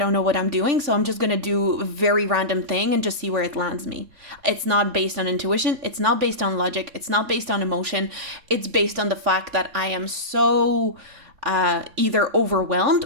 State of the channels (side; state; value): left; late; 3.6 ms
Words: I'm doing, so I'm just going to do a very random thing and just see where it lands me. It's not based on intuition, it's not based on logic, it's not based on emotion. It's based on the fact that I am so either overwhelmed